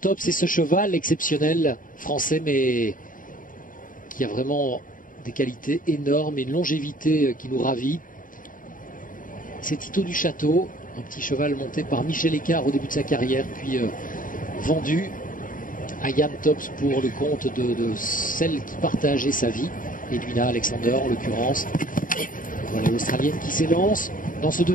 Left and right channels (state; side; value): late; right; 0.39 ms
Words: c'est ce cheval exceptionnel français, mais qui a vraiment des qualités énormes et une longévité qui nous ravit. C'est Tito du Château, un petit cheval monté par Michel Écart au début de sa carrière, puis vendu à Yann Tops pour le compte de celle qui partageait sa vie, Edwina Alexander en l'occurrence. Voilà l'Australienne qui s'élance dans ce